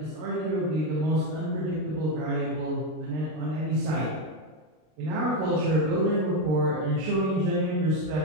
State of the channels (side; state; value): left; late; 32 ms